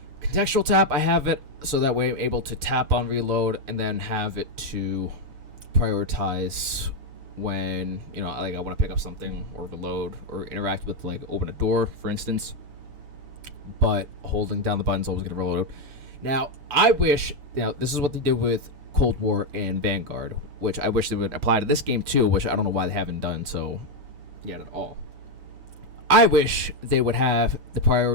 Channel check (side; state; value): left; late; 7.1 ms